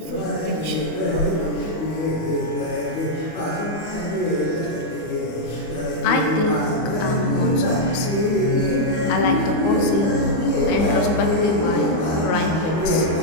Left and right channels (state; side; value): late; right; 25 ms